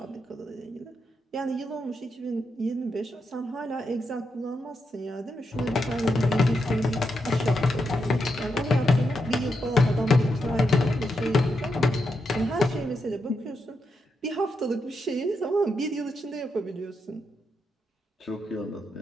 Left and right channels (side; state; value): both; normal; correlation 0.83